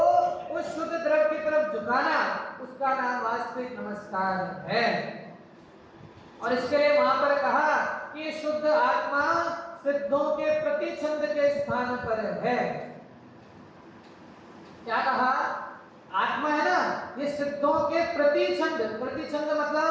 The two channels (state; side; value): identical; both; correlation 1.00